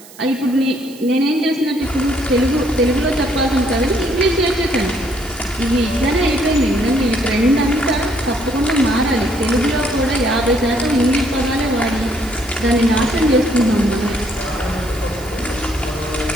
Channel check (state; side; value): noise; right; hiss, 21 dB below the sound